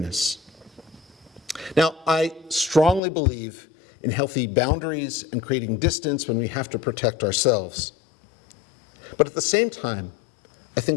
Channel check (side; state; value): right; drops out; at 3.0 s